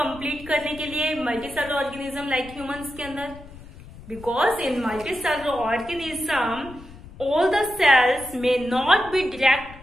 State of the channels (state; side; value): noise; left; rumble, 18 dB below the sound